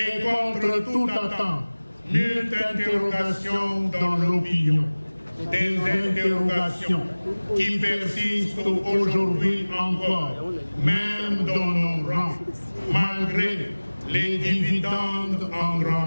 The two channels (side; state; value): both; inverted; correlation -1.00